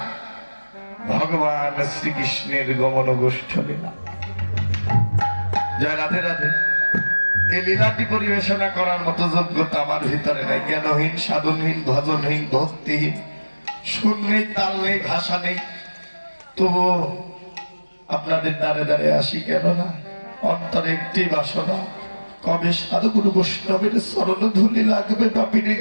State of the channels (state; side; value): inverted; both; correlation -1.00